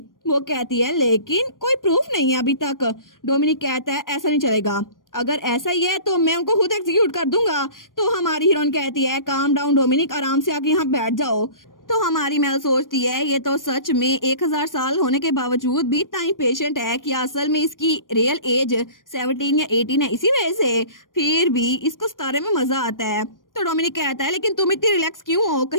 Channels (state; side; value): late; right; 0.90 ms